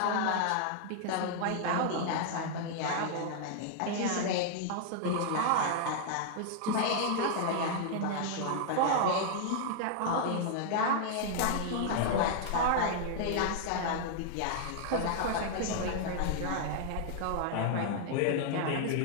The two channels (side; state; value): both; different; correlation 0.00